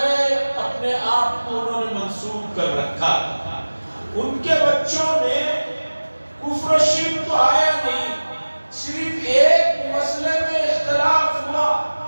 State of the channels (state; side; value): inverted; both; correlation -1.00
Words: اپنے آپ کو انہوں نے منسوب کر رکھا تھا۔ ان کے بچوں میں کفر و شرک تو آیا نہیں، صرف ایک مسئلے میں اختلاف ہوا۔